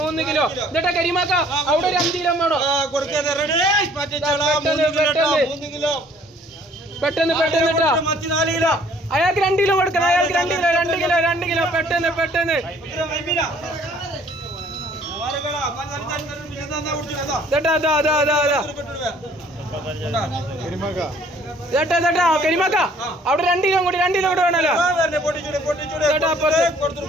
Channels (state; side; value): normal; both; correlation 0.58